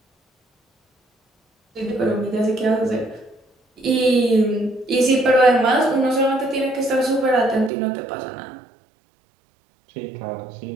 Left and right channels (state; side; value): drops out; left; at 7.7 s